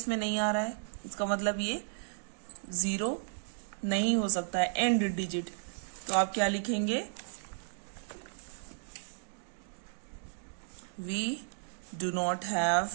नहीं आ रहा है, इसका मतलब ये 0 नहीं हो सकता है एंड डिजिट। तो आप क्या लिखेंगे, we do not have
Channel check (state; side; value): silent; left; digital silence